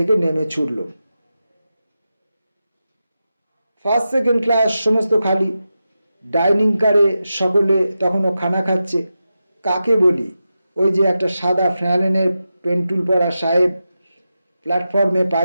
নেমে ছুটলাম। ফার্স্ট সেকেন্ড ক্লাস সমস্ত খালি। ডাইনিং কারে সকলে তখনও খানা খাচ্ছে। কাকে বলি? ওই যে একটা সাদা ফ্যালেনের পেন্টুল পরা সাহেব প্ল্যাটফর্মে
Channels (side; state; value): both; inverted; correlation -0.91